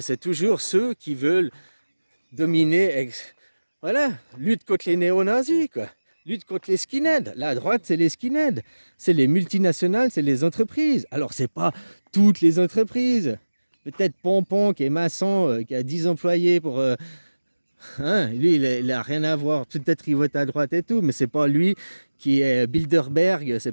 c'est toujours ceux qui veulent dominer, voilà, lutte contre les néo-nazis, quoi. Lutte contre les skinheads. La droite, c'est les skinheads. C'est les multinationales, c'est les entreprises. Alors, c'est pas toutes les entreprises. Peut-être Pompon, qui est maçon, qui a 10 employés pour... lui, il a rien à voir. Peut-être il vote à droite et tout, mais c'est pas lui qui est Bilderberg,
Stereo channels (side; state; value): both; inverted; correlation -1.00